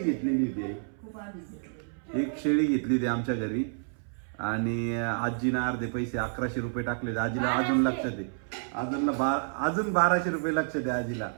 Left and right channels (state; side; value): silent; left; 58 dB below the other